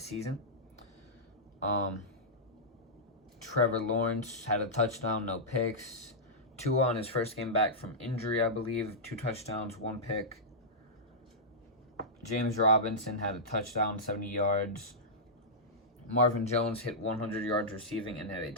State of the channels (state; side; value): normal; both; correlation -0.12